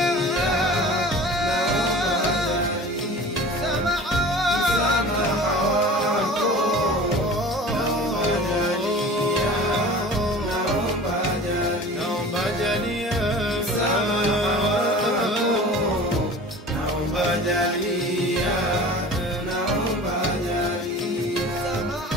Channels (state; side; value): normal; both; correlation 0.40